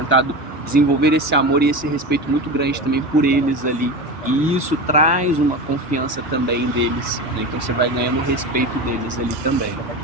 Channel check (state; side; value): normal; both; correlation 0.25